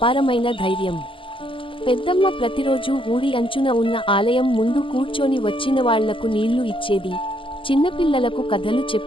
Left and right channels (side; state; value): right; late; 0.25 ms